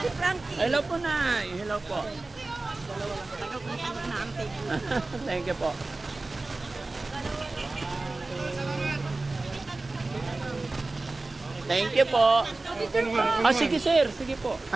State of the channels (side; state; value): left; quieter; 3.2 dB